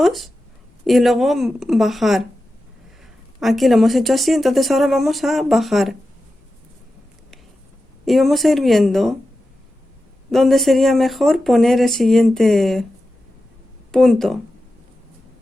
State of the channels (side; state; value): both; normal; correlation 0.92